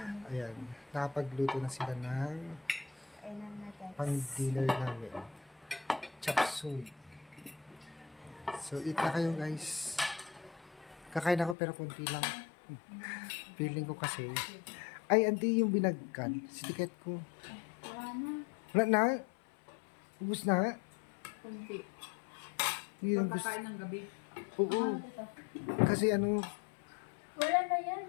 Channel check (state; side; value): drops out; right; at 11.6 s